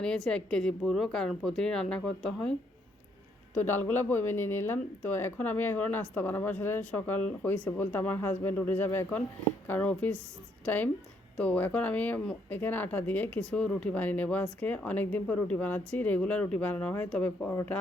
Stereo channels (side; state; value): both; normal; correlation 0.72